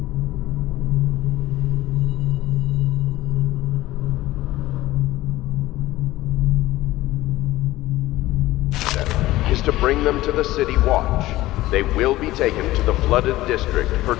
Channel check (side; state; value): right; quieter; 16.9 dB